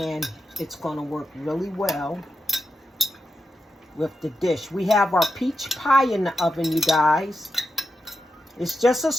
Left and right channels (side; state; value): both; normal; correlation 0.88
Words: it's going to work really well with the dish. We have our peach pie in the oven, you guys. It's just a